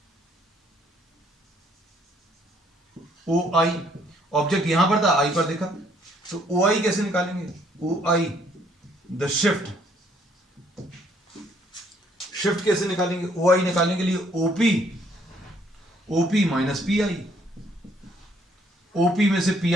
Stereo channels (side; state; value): both; normal; correlation 0.66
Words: OI, object यहां पर था, आई पर देखा, तो OI कैसे निकालेंगे, OI द शिफ्ट, शिफ्ट कैसे निकालेंगे, OI निकालने के लिए OP माइनस PI, OP में से